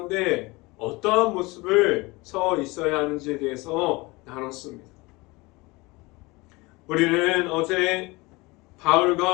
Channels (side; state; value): right; quieter; 23.7 dB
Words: 어떠한 모습을 서 있어야 하는지에 대해서 나눴습니다. 우리는 어제